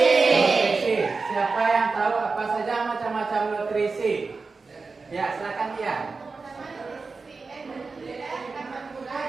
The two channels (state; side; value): quieter; left; 4.3 dB